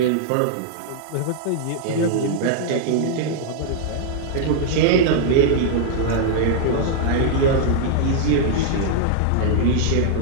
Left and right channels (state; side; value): different; both; correlation -0.01